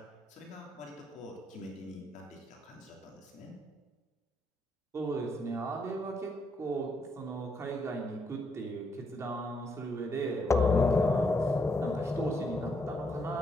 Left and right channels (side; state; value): both; normal; correlation 0.76